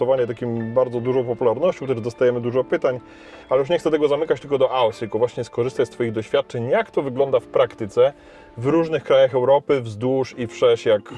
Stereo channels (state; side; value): identical; both; correlation 1.00